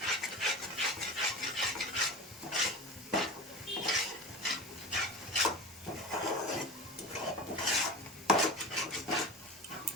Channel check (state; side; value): normal; both; correlation 0.32